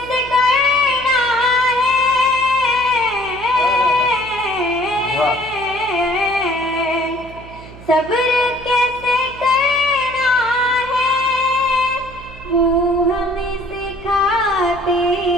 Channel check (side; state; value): right; noise; hum, 17 dB below the sound